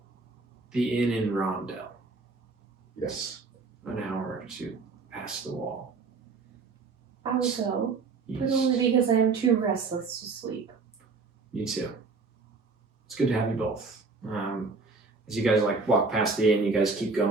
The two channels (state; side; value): quieter; left; 4.2 dB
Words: The inn in Rondell. Yes. An hour or two past the wall. I will go, but Yes. only because I am too restless to sleep. Me too. It's good to have you both. As you guys like walk past the inn, you guys keep